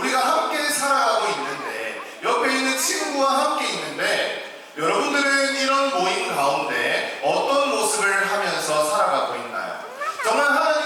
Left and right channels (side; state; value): both; identical; correlation 1.00